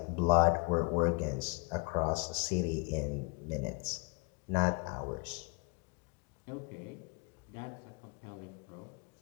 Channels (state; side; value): quieter; right; 30.5 dB